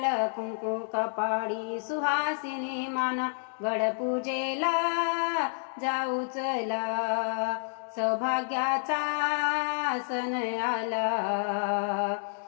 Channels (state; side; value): silent; right; digital silence